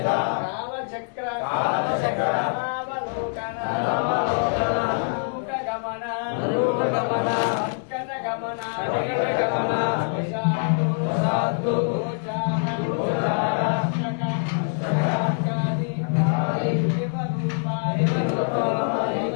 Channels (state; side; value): silent; right; 62 dB below the other